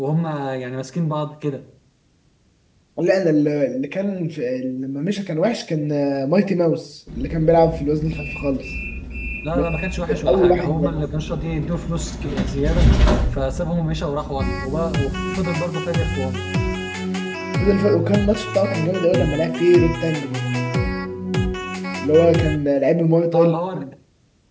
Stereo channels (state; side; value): identical; both; correlation 1.00